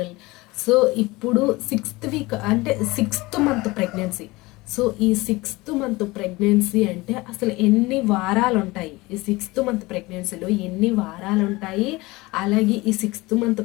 So ఇప్పుడు 6th week అంటే 6th month pregnancy. So ఈ 6th month pregnancy అంటే అసలు ఎన్ని వారాలు ఉంటాయి, ఈ 6th మంత్ ప్రెగ్నెన్సీలో ఎన్ని వారాలు ఉంటాయి, అలాగే ఈ 6th మంత్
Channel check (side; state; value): right; quieter; 21.7 dB